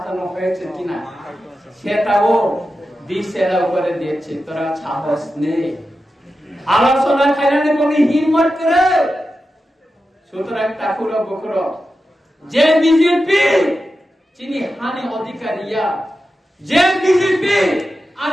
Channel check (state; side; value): normal; both; correlation 0.91